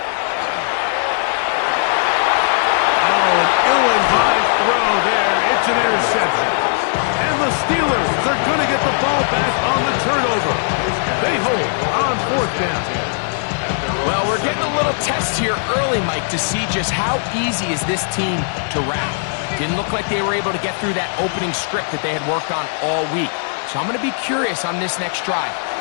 Oh, an ill-advised throw there. It's an interception. And the Steelers are going to get the ball back on the turnover. They hold on fourth down. Well, we're getting a little test here early, Mike, to see just how easy is this team to rout. Didn't look like they were able to get through that opening script that they had worked on all week. So I'm going to be curious on this next drive.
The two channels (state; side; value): silent; right; digital silence